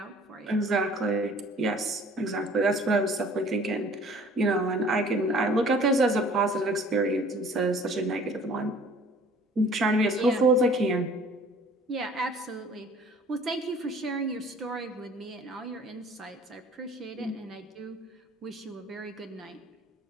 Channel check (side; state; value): both; normal; correlation 0.52